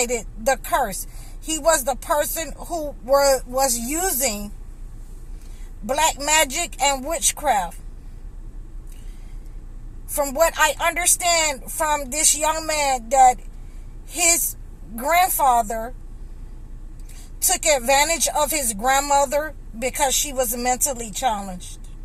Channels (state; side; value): identical; both; correlation 1.00